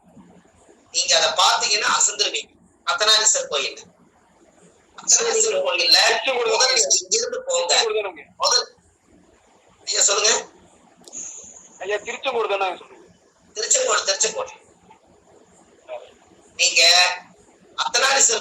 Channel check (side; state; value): both; identical; correlation 1.00